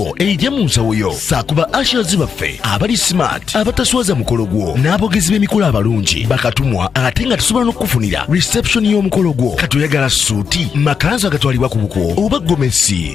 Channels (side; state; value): right; quieter; 6.4 dB